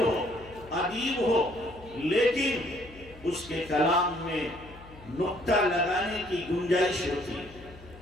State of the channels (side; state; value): left; noise; hum, 20 dB below the sound